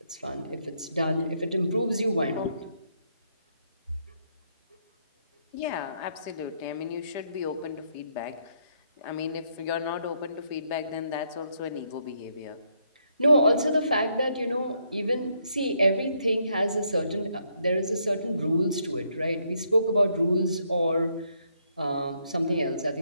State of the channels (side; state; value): both; inverted; correlation -0.74